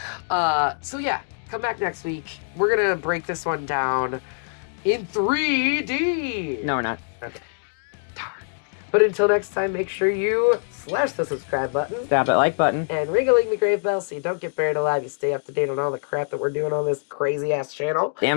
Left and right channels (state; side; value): silent; right; digital silence